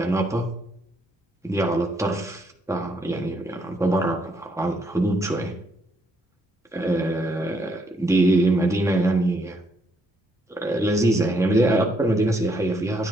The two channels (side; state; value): both; normal; correlation 0.73